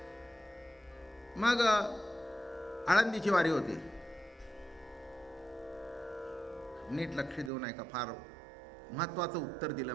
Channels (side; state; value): left; drops out; at 7.5 s